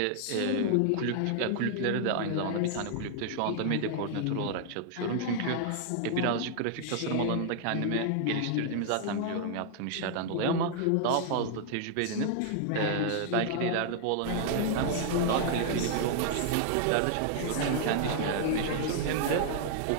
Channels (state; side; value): different; both; correlation 0.00